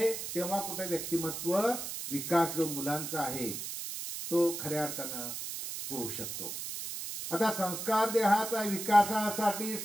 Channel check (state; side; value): noise; right; hiss, 6 dB below the sound